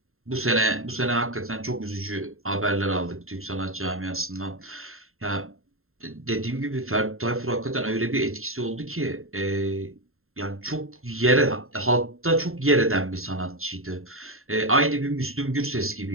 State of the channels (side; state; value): left; late; 0.61 ms